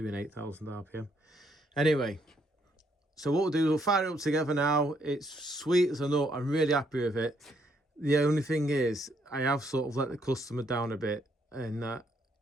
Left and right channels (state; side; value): normal; both; correlation 0.72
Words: 8,000 RPM. Anyway, so what we'll do, we'll fire it up together now. It's sweet as a nut. I'm really happy with it. The only thing is, I have sort of let the customer down a bit, and that